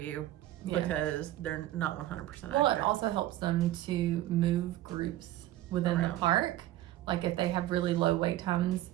because they're not 100% accurate. Well, it also helps them to move groups within the park. Like if they have really low wait times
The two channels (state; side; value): quieter; left; 14.6 dB